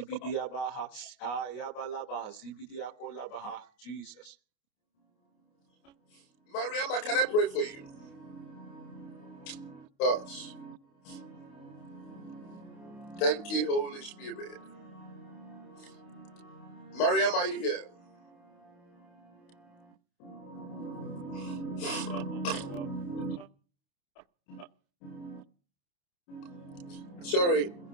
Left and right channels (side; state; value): right; late; 29 ms